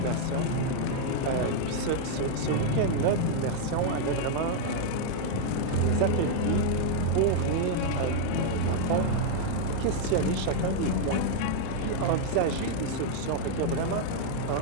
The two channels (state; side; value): different; both; correlation 0.00